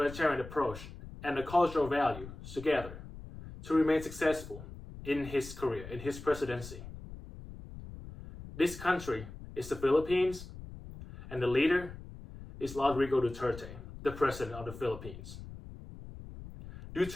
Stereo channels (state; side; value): noise; left; rumble, 13 dB below the sound